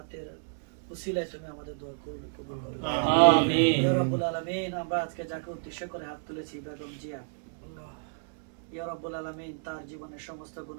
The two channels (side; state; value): left; silent; 57 dB below the other